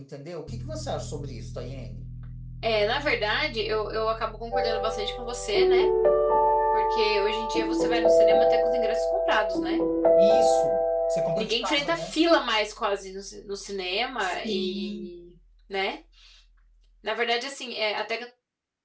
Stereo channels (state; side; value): identical; both; correlation 1.00